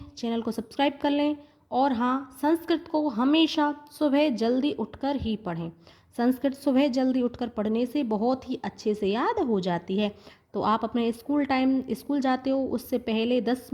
चैनल को सब्सक्राइब कर लें। और हाँ, संस्कृत को हमेशा सुबह जल्दी उठकर ही पढ़ें। संस्कृत सुबह जल्दी उठकर पढ़ने से बहुत ही अच्छे से याद हो जाती है। तो आप अपने स्कूल जाते हो उससे पहले 10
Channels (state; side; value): identical; both; correlation 1.00